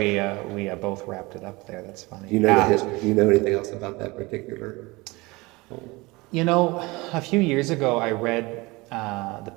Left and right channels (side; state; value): left; quieter; 23.3 dB